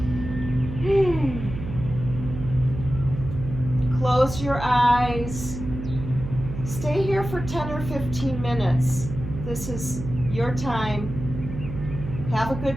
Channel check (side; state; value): right; noise; hum, 8 dB below the sound